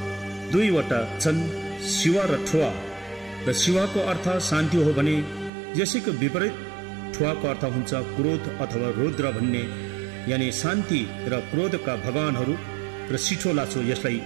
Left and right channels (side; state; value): left; drops out; at 5.5 s